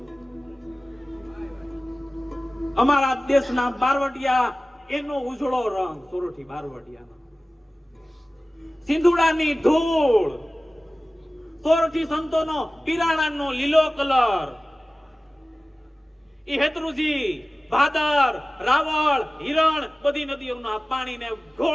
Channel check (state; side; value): normal; both; correlation 0.97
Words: અમારા દેશના બારવટિયા એનો ઉજળો રંગ સોરઠી બારવટિયાનો. સિંધુડાની ધૂળ સોરઠી સંતોનો પીરાણાનો લીલો કલર. ઈ હેતરુજી ભાદર રાવળ હિરણ બધી નદીઓના પાણીને